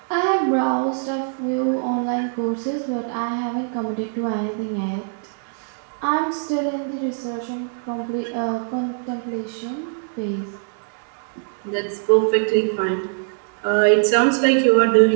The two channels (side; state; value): left; silent; digital silence